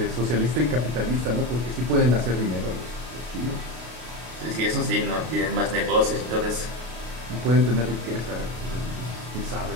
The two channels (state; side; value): late; left; 33 ms